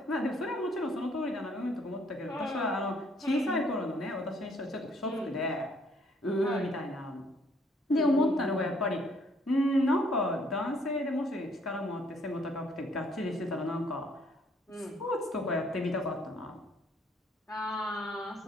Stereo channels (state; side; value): normal; both; correlation 0.64